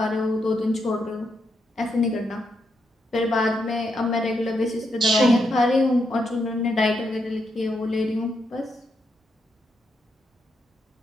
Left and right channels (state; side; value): normal; both; correlation 0.81